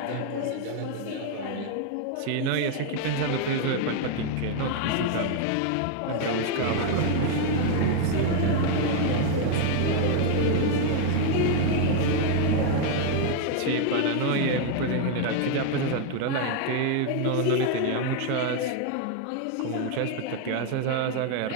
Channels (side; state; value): both; different; correlation 0.01